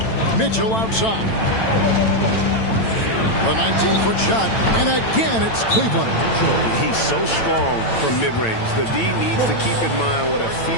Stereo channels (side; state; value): right; late; 9.0 ms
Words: Mitchell outside. The 19-foot shot, and again it's Cleveland. He's so strong from mid-range. The D needs to keep in mind what a